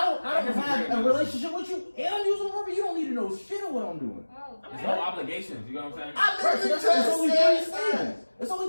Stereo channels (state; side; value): inverted; both; correlation -1.00